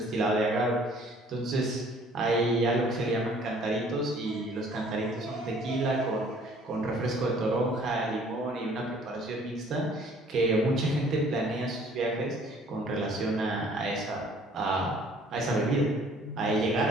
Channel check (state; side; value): normal; both; correlation 0.56